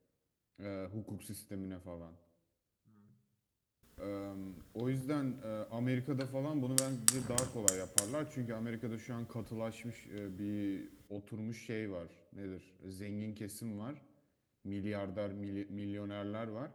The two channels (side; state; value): both; identical; correlation 1.00